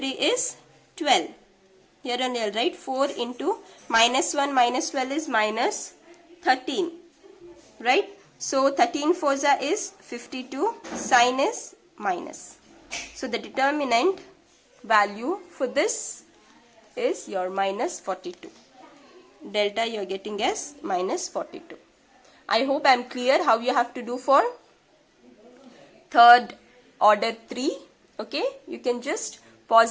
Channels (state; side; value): identical; both; correlation 1.00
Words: is 12. Here only I'll write 4 into minus 1 minus 12 is minus 13. Right? So 13 4 is 52. Sign is minus. So the determinant value for this is your minus 42. Delta you are getting as minus 42. I hope I am clear how you have to do for third order 3. Okay, you can just